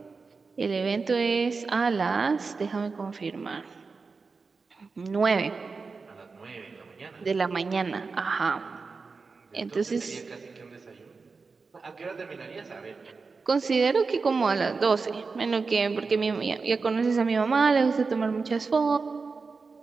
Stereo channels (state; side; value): quieter; left; 4.5 dB